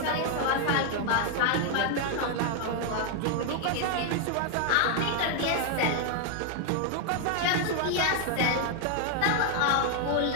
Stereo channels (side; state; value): both; different; correlation 0.00